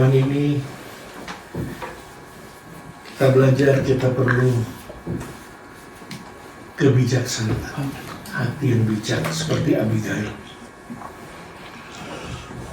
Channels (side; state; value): both; identical; correlation 1.00